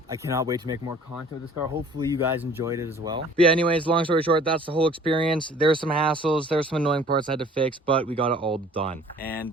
I cannot wait to make more content with this car. Hopefully you guys enjoyed it as well. But yeah, anyways, long story short, that's the whole experience. There's some hassles, there's some annoying parts I had to fix, but we got it all done.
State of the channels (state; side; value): normal; both; correlation 0.51